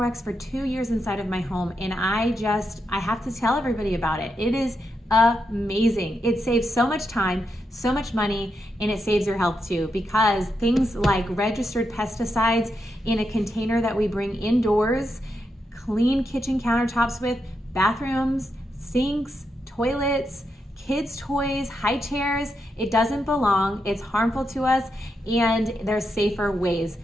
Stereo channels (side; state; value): both; normal; correlation 0.84